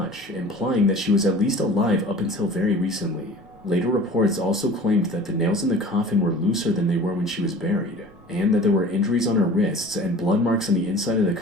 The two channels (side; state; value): both; normal; correlation 0.42